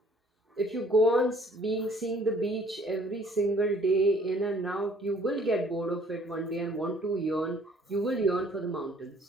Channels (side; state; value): both; normal; correlation 0.58